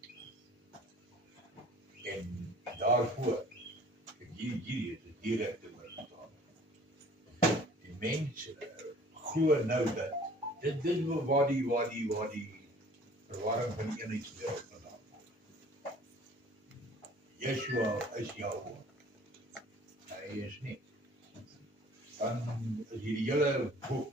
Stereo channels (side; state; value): both; normal; correlation 0.50